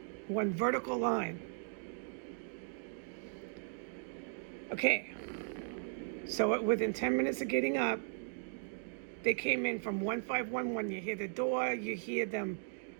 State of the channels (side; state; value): left; silent; digital silence